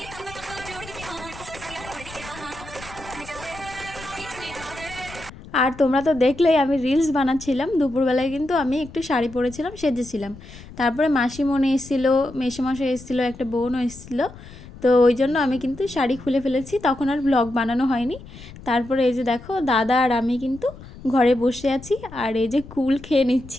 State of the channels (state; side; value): noise; left; rumble, 17 dB below the sound